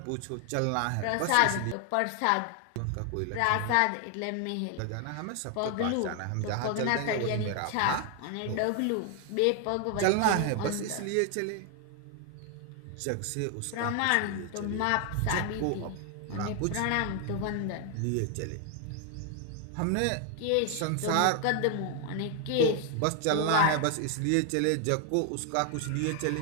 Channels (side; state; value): both; different; correlation 0.00